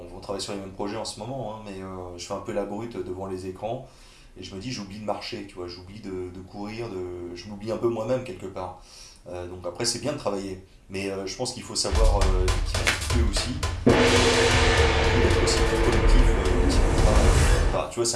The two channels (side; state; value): both; identical; correlation 1.00